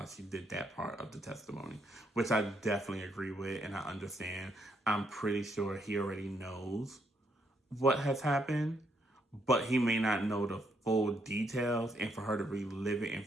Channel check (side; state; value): both; normal; correlation 0.75